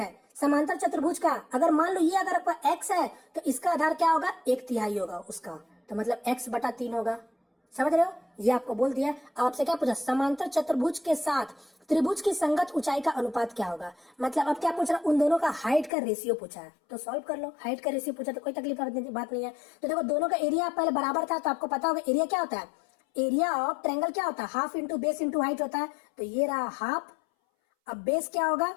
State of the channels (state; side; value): drops out; right; at 15.9 s